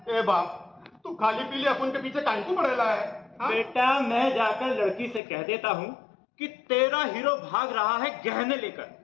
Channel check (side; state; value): right; drops out; at 5.2 s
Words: ए बाप, तू खाली पीली अपन के पीछे काहे को पड़ेला है? हाँ? बेटा मैं जाकर लड़की से कह देता हूँ कि तेरा हीरो भाग रहा है गहने लेकर।